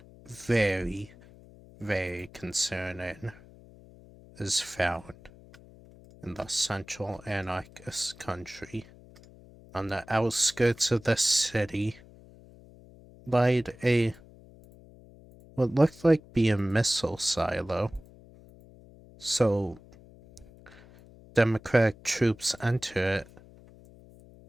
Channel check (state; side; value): noise; left; hum, 22 dB below the sound